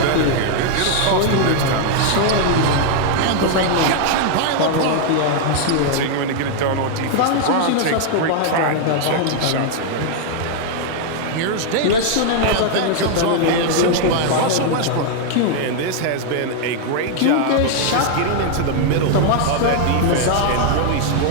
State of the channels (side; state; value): both; different; correlation 0.00